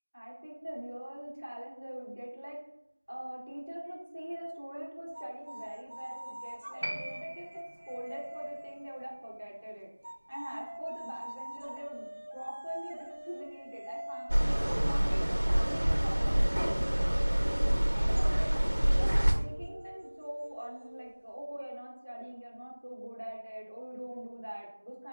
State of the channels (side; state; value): both; inverted; correlation -1.00